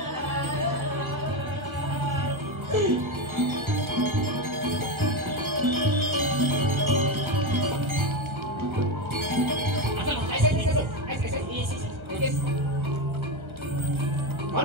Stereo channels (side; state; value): left; late; 1.3 ms